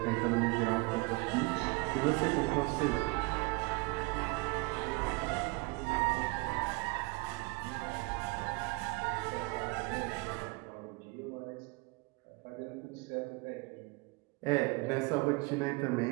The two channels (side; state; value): left; quieter; 26.9 dB